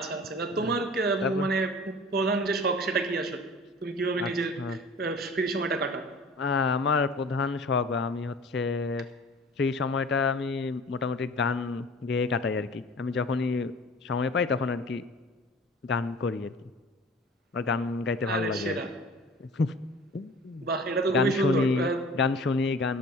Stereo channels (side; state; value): both; normal; correlation 0.44